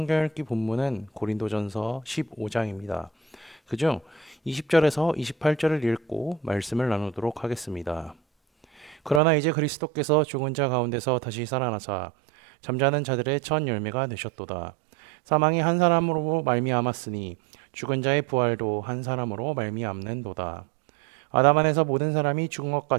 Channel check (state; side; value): drops out; left; at 9.2 s